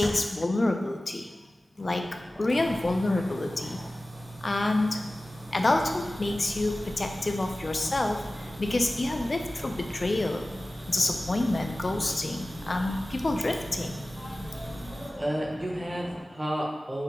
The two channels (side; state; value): both; normal; correlation 0.97